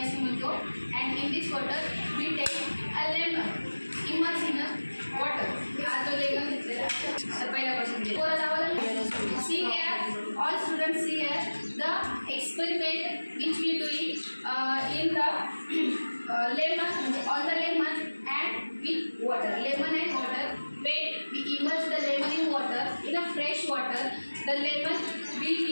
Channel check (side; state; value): both; inverted; correlation -1.00